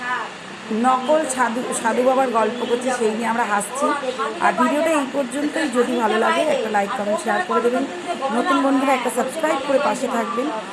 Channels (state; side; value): identical; both; correlation 1.00